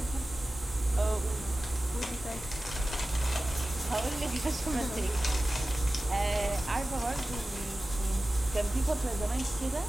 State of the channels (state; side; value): normal; both; correlation 0.96